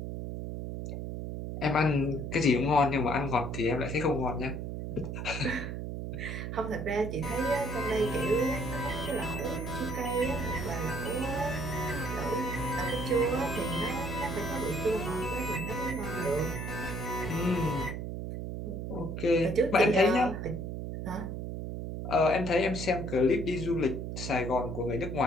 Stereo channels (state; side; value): noise; right; hum, 5 dB below the sound